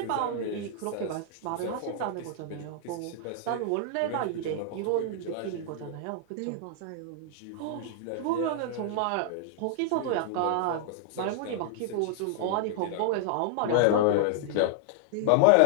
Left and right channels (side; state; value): both; different; correlation -0.01